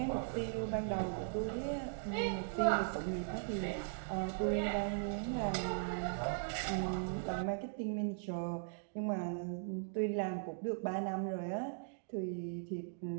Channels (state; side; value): silent; left; digital silence